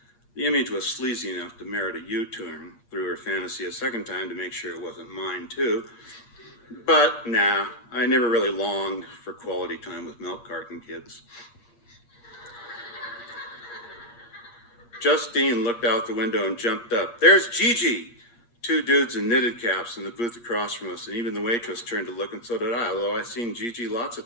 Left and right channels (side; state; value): right; late; 8.5 ms